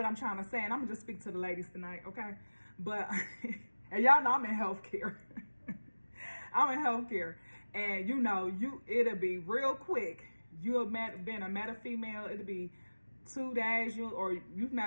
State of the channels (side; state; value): both; inverted; correlation -1.00